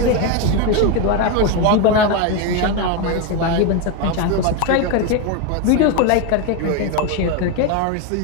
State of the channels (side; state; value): both; different; correlation 0.03